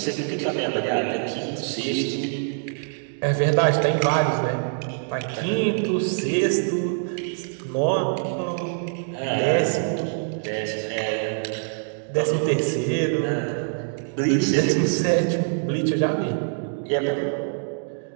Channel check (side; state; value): left; silent; digital silence